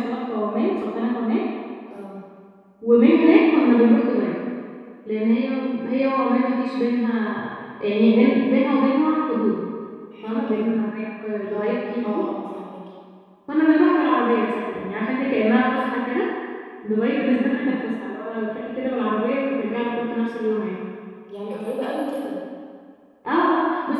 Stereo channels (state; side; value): identical; both; correlation 1.00